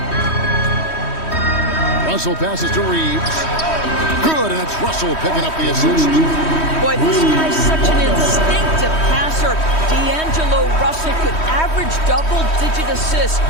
Russell passes to Reeves. Good, and it's Russell picking up the assist. Boy, this guy's such an instinctive passer. D'Angelo Russell could average double-digit assists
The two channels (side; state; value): right; late; 3.1 ms